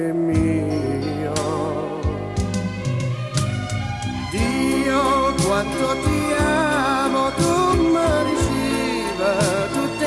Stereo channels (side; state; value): both; identical; correlation 1.00